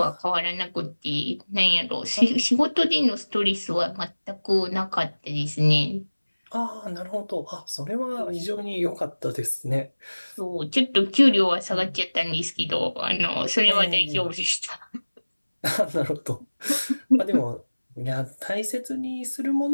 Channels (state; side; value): inverted; both; correlation -1.00